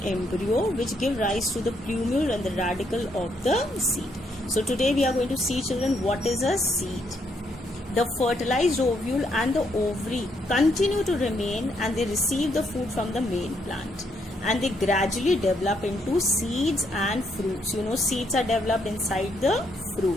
embryo, which give rise to the plumule and the radicle of the seed. So today we are going to see, children, what is a seed. The fertilized ovule and the ovary continue to remain, and they receive the food from the main plant, and they gradually develop into seeds and fruits. You know, seeds are developed inside the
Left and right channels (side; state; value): both; normal; correlation 0.74